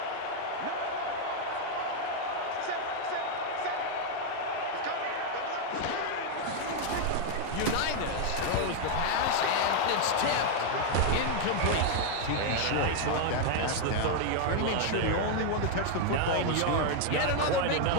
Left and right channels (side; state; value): both; different; correlation 0.00